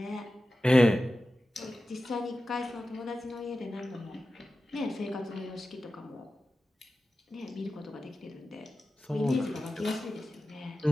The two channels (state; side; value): normal; both; correlation 0.94